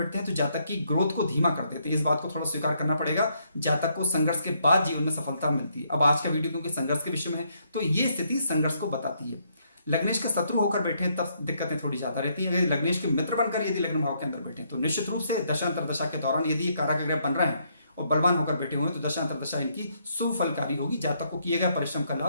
हैं तो जातक की ग्रोथ को धीमा कर देते हैं। इस बात को थोड़ा स्वीकार करना पड़ेगा। जातक को संघर्ष के बाद जीवन में सफलता मिलती है। अब आज का वीडियो क्योंकि संघर्ष के विषय में है तो ये स्थिति संघर्ष को बताती है। लग्नेश के शत्रु होकर बैठे तब दिक्कतें थोड़ी ज्यादा रहती है। लग्नेश के मित्र बनकर यदि लग्न भाव के अंदर बैठे तो निश्चित रूप से दशांतर दशा के दौरान यदि ये कारक ग्रह बन रहे हैं और बलवान होकर बैठे हुए हैं तो दशांतर दशा इनकी सुफलकारी होगी। जातक को किए गए परिश्रम का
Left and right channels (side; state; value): both; inverted; correlation -0.73